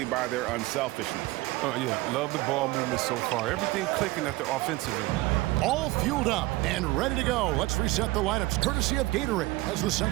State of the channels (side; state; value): left; quieter; 19.8 dB